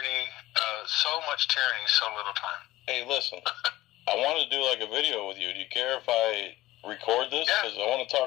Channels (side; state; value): right; quieter; 17.0 dB